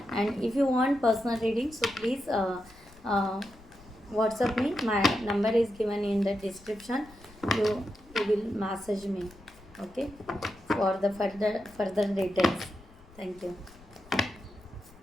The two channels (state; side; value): noise; left; rumble, 23 dB below the sound